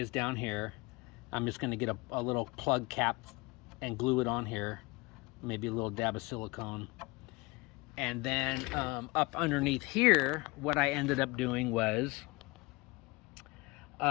down here. I'm just going to get a little plug cap and glue it on here. Maybe a little dab of silicone. And then up underneath here, what I ended up doing was,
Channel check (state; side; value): quieter; right; 24.4 dB